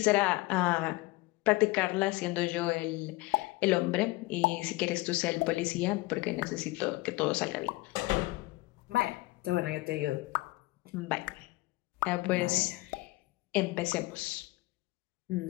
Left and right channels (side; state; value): right; quieter; 21.3 dB